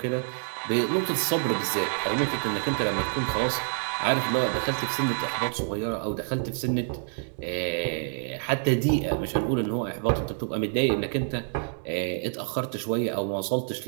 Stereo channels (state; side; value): silent; left; 56 dB below the other